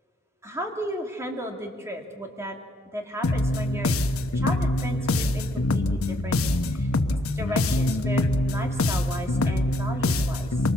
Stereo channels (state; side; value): normal; both; correlation 0.70